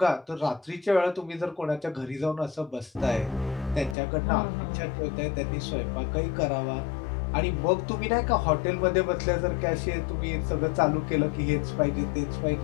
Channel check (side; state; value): right; drops out; at 4.0 s